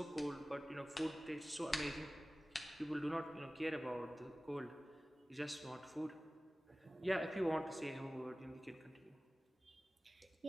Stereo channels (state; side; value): normal; both; correlation 0.97